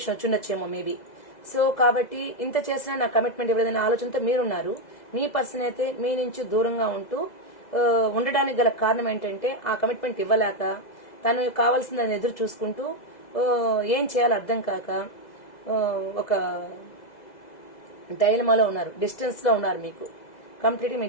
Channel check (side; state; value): right; late; 2.0 ms